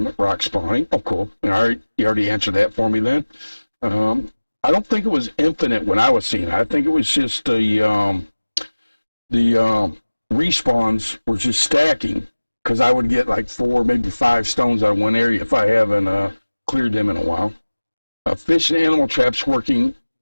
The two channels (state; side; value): inverted; both; correlation -1.00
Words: rock spawning. Oh, cool. All right, you already answered that for me then. I don't think it was infinite when I was seeing it. I think it was just the respawns were just stacking because I would get like 4, maybe 5 stones out of one area if I haven't cleared them in a while. Fish and animal traps working